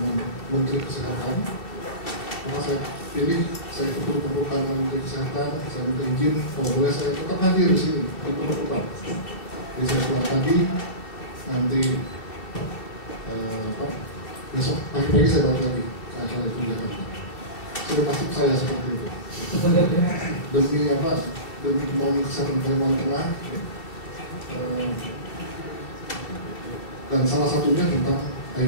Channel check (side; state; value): right; late; 2.7 ms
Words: Menteri Kesehatan, maka saya pilih saya ikut pembukaan dengan Menteri Kesehatan. Saya minta izin kalau boleh saya tetap hadir di sini di pembukaan. Jadi saya pulang pagi, nanti besok pagi-pagi saya balik lagi ke acara itu di Jakarta. Sudah masuk saya seperti itu. Demi apa? Demi kemauan kesehatan Kalimantan Tengah. Dan salah satunya tentang